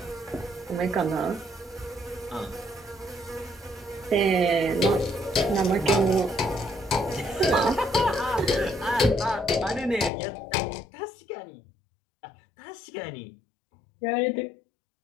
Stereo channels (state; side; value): drops out; right; at 10.1 s